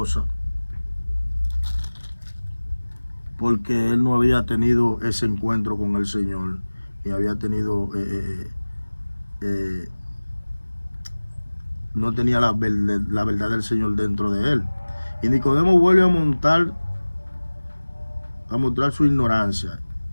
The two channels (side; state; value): both; inverted; correlation -1.00